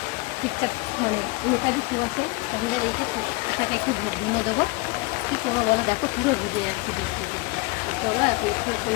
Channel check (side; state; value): right; quieter; 24.4 dB